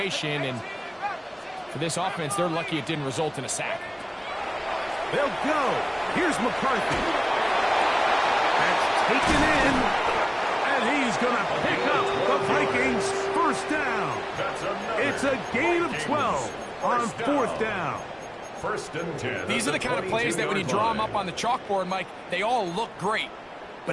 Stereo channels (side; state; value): both; identical; correlation 1.00